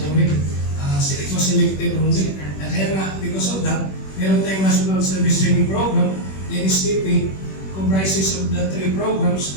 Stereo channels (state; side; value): late; right; 21 ms